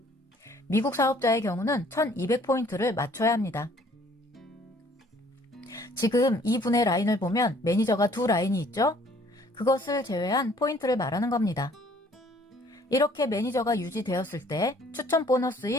미국 사업자의 경우는 1200포인트를 맞춰야 합니다. 지금 이 분의 라인을 보면 매니저가 2라인이 있죠? 그것을 제외한 포인트를 말하는 겁니다. 이렇게 매니저가 유지되었을 때 추천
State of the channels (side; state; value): both; normal; correlation 0.58